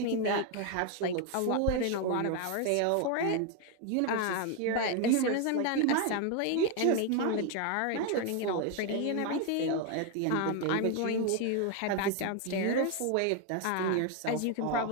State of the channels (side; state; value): both; different; correlation 0.01